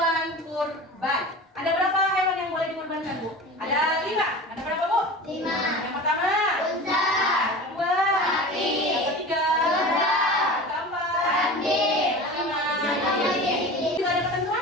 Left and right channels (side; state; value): both; normal; correlation 0.34